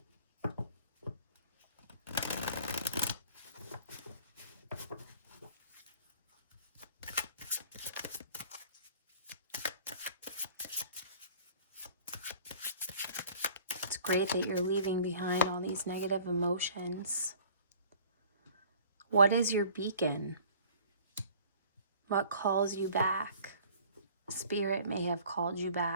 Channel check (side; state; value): both; inverted; correlation -0.50